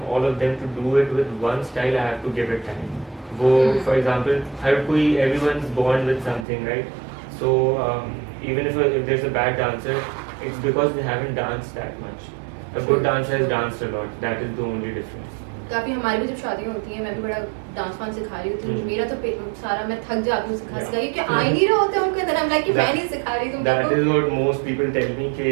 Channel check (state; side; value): drops out; left; at 6.5 s